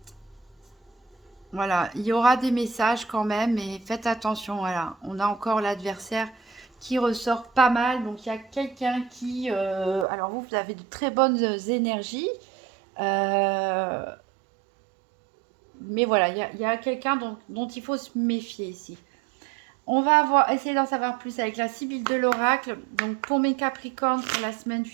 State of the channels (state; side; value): drops out; left; at 10.1 s